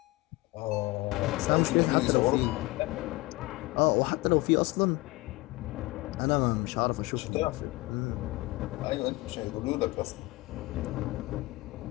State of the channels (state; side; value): quieter; right; 21.4 dB